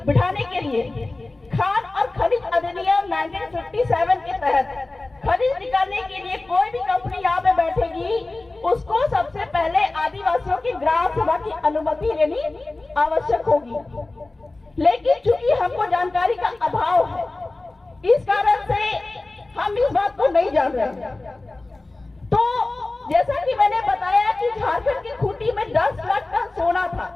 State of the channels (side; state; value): right; quieter; 3.1 dB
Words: बिठाने के लिए, खान और खनिज अधिनियम 1957 के तहत खनिज निकालने के लिए कोई भी कंपनी यहाँ पे बैठेगी, उसको सबसे पहले आदिवासियों की ग्राम सभा की अनुमति लेनी आवश्यक होगी। लेकिन चूंकि हमको जानकारी का अभाव है, इस कारण से हम इस बात को नहीं जान रहे। तो जैसा कि मैंने बताया कि झारखंड की खूंटी में 10 लाख टन सोना था